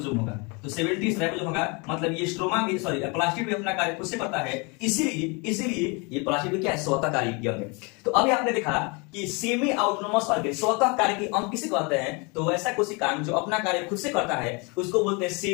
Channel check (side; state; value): right; quieter; 30.3 dB